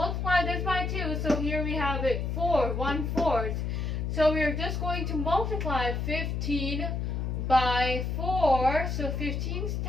this by 2. So here we have it 4, 1/4. So we're just going to multiply 15 by 4. So 15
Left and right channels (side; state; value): left; noise; hum, 1 dB below the sound